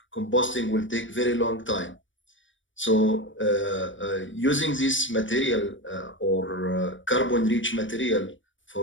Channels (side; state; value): right; late; 0.56 ms